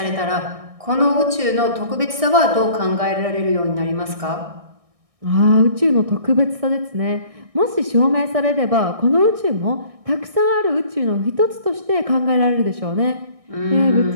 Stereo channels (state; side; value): late; left; 1.6 ms